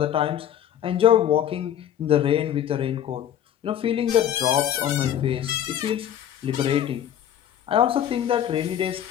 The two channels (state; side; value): quieter; right; 10.4 dB